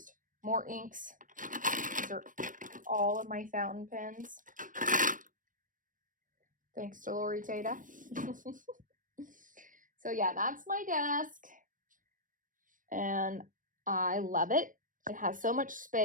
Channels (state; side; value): late; left; 0.38 ms